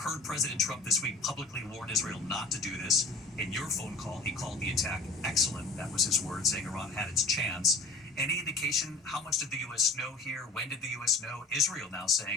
President Trump this week publicly warn Israel not to do this. In your phone call, he called the attack excellent. That was his word, saying Iran had its chance. Any indication how much did the U.S. know here? When did the U.S. know? Israel now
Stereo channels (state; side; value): quieter; right; 3.4 dB